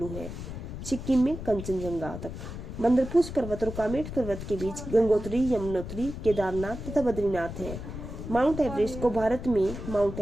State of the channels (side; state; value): left; noise; rumble, 8 dB below the sound